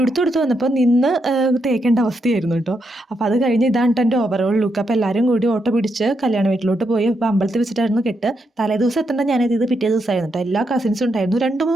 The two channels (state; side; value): normal; both; correlation 0.81